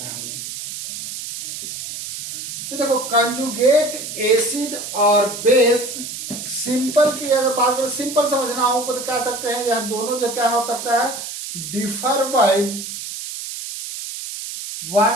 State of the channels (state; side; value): noise; right; hiss, 8 dB below the sound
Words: हैं हम लोग। तो देखो कंजुगेट एसिड और बेस, सिंपल की अगर बात करें, सिंपल समझना हो तो क्या सकते हैं, यह दोनों जो क्या हो सकता है, differ by